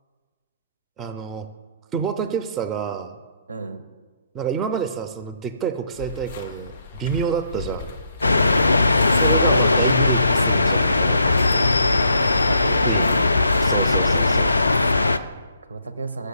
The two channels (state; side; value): inverted; both; correlation -0.73